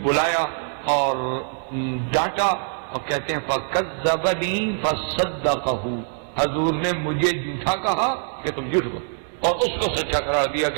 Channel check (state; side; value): silent; left; 63 dB below the other